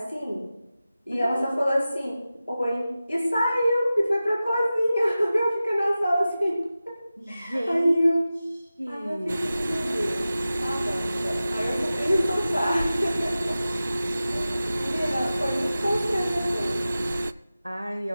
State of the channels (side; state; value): both; inverted; correlation -0.95